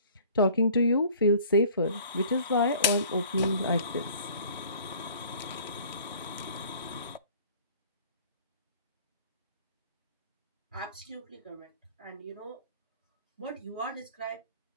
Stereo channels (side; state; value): both; inverted; correlation -0.51